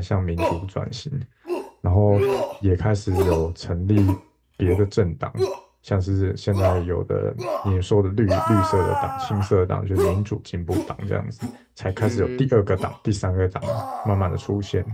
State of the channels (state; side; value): identical; both; correlation 1.00